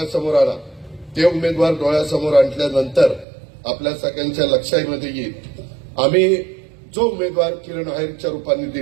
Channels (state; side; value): drops out; left; at 3.2 s